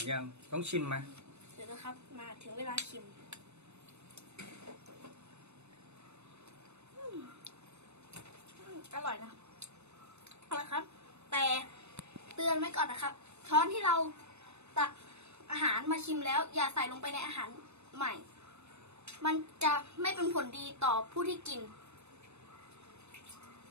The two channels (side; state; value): left; late; 0.81 ms